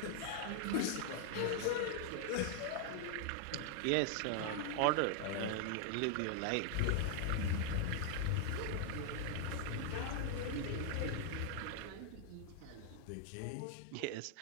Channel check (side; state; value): both; different; correlation 0.00